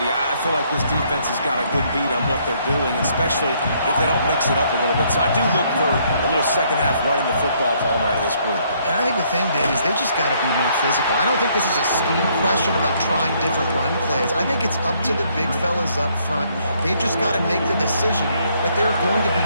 I feel like this defense has got a good beat on what they're doing, especially if they don't mix it up a little bit. So I do look for a little second half running the football, Palmer, out of this group. And I think the thing, Dave, is they just got to be more physical. I don't think this is a scheme question about trying different run plays. I think it's up to the big fellas up front. They've just got to make the decision that they're going to be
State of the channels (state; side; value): inverted; both; correlation -0.68